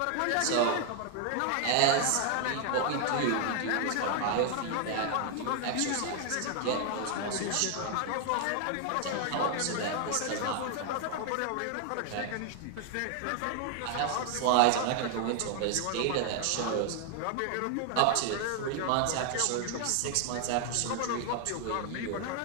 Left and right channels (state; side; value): different; both; correlation 0.00